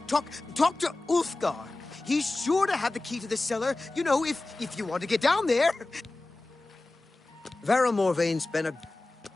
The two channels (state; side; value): quieter; right; 3.0 dB